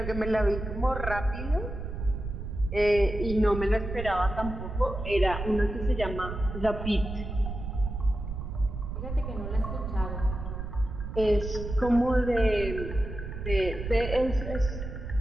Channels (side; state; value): right; noise; rumble, 6 dB below the sound